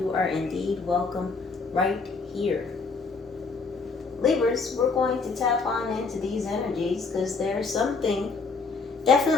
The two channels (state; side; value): quieter; right; 4.4 dB